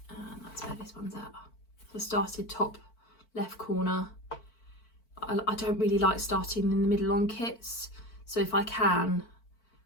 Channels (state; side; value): late; right; 4.5 ms